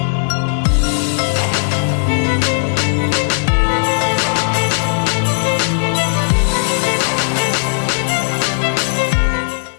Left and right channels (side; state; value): right; silent; digital silence